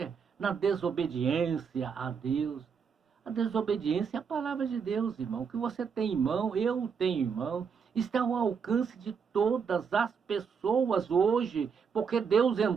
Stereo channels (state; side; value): quieter; left; 6.3 dB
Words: na desobediência a Deus. A desobediência é a palavra de Deus, irmão. O que você tem em mão, eu tenho em mão, está ao alcance de todas as pessoas hoje, porque Deus